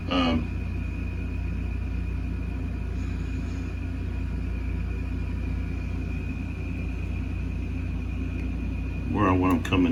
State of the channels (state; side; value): identical; both; correlation 1.00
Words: Where I want them